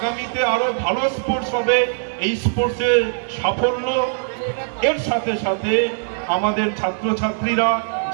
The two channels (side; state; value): left; silent; 65 dB below the other